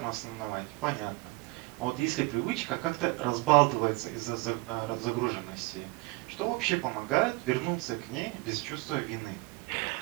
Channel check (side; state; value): left; quieter; 24.6 dB